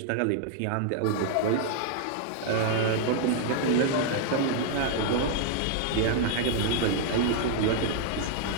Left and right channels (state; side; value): different; both; correlation 0.00